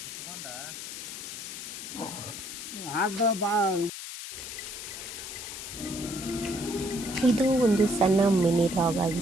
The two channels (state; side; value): noise; left; hiss, 9 dB below the sound